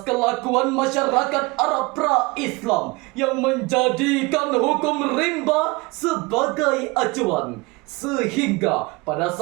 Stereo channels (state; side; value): quieter; left; 24.6 dB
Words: kelakuan masyarakat Arab pra-Islam yang menjadikan hukum rimba sebagai acuan. Sehingga pada